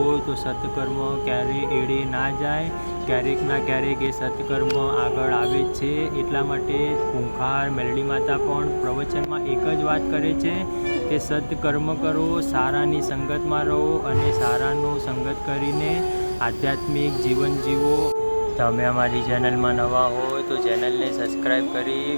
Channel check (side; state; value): both; inverted; correlation -1.00